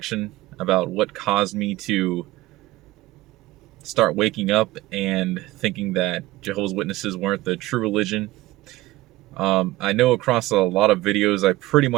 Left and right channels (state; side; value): quieter; left; 18.1 dB